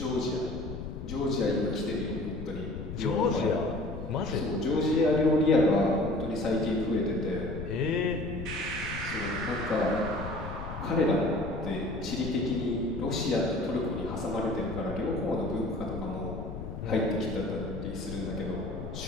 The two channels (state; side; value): noise; left; rumble, 8 dB below the sound